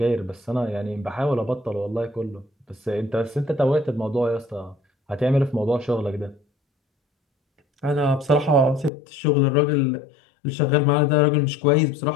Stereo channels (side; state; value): right; drops out; at 8.9 s